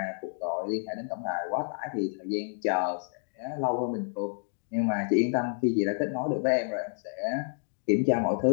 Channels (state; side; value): silent; right; digital silence